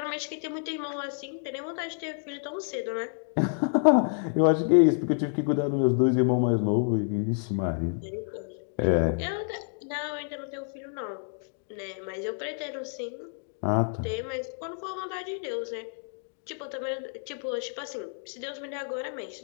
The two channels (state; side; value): silent; right; 59 dB below the other